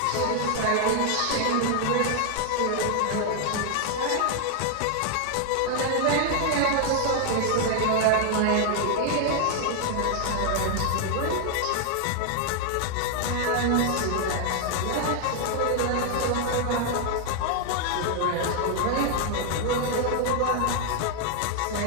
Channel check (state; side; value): different; both; correlation 0.00